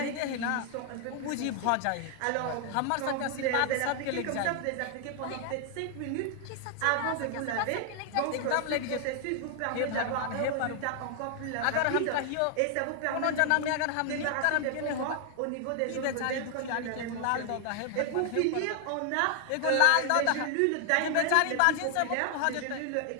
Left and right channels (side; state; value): both; different; correlation 0.00